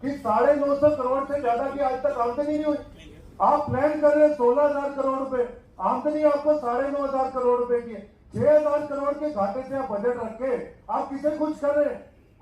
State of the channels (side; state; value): both; identical; correlation 1.00